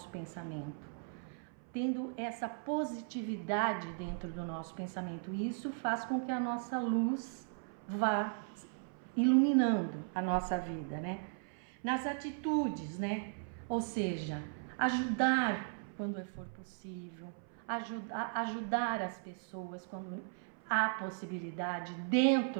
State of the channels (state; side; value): silent; left; 53 dB below the other